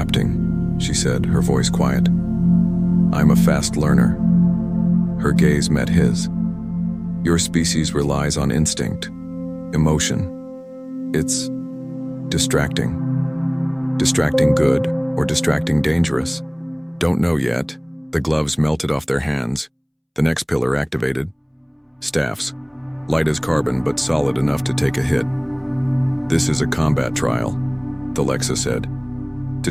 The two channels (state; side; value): identical; both; correlation 1.00